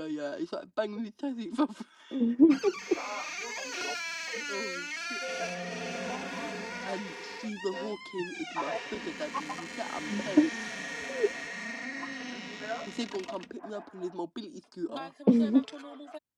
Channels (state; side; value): identical; both; correlation 1.00